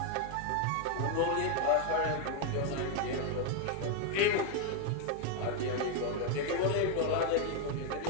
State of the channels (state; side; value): different; both; correlation 0.01